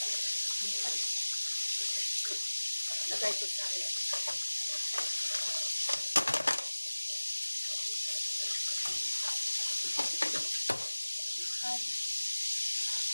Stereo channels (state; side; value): inverted; both; correlation -1.00